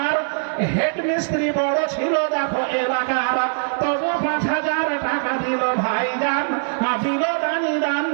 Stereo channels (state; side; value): silent; left; 65 dB below the other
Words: হেড মিস্ত্রি বড় ছিল দেখো এলাকার, তবু 5000 টাকা দিল ভাই জান, দিল দানি দান